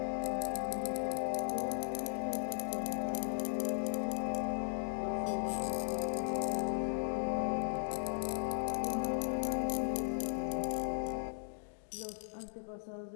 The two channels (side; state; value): right; silent; digital silence